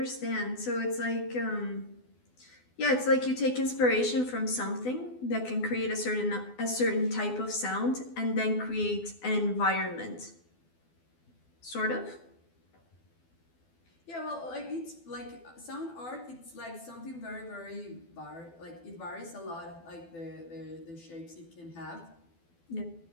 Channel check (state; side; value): late; right; 12 ms